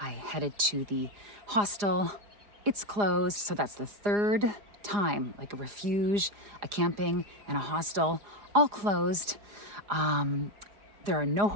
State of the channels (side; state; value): left; late; 4.9 ms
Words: headed to the hostel. It's closed, so that's the third time, like a refuge, a camping, and a hostel, all closed. There are no